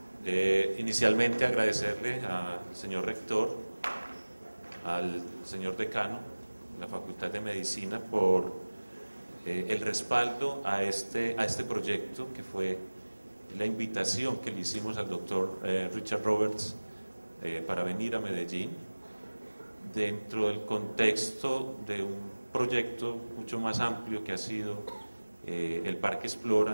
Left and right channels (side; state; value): both; inverted; correlation -1.00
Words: Inicialmente agradecerle al señor rector, al señor decano de la Facultad de Medicina por el respaldo a este proyecto, que fue la invitación que le hicimos al doctor Richard Roberts para venir a Medellín dentro del contexto de un proyecto mucho más amplio que ha sido el Parque